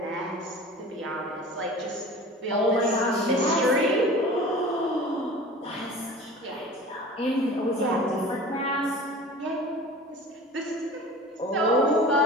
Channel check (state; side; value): normal; both; correlation 0.39